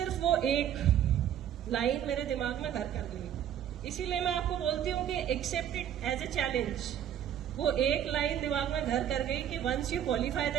वो एक लाइन मेरे दिमाग में घर कर गई. इसीलिए मैं आपको बोलती हूँ कि accept it as a challenge. वो एक लाइन दिमाग में घर कर गई कि once you qualify the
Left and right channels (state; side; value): quieter; left; 10.1 dB